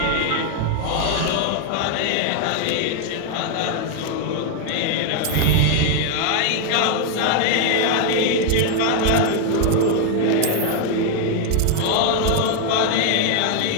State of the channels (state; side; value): different; both; correlation 0.00